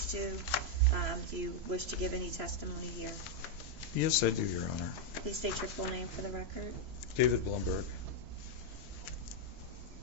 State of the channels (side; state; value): left; late; 3.0 ms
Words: to. Do you wish to give any testimony here? Yes, I do, Your Honor. Please state your full name for the record. David Blumberg.